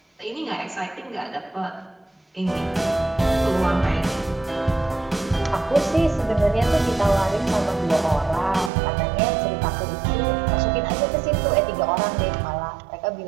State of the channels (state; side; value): drops out; left; at 8.7 s